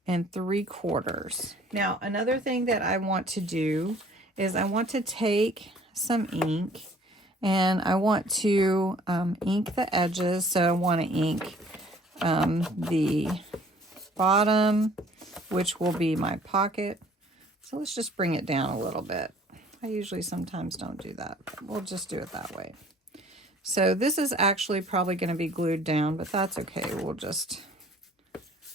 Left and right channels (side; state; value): both; normal; correlation 0.55